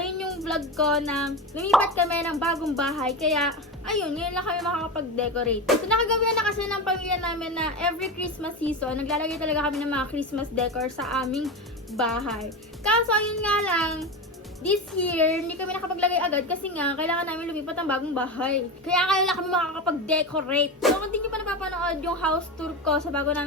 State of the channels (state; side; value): normal; both; correlation 0.21